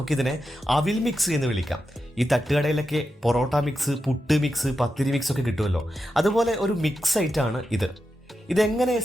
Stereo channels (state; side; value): normal; both; correlation 0.89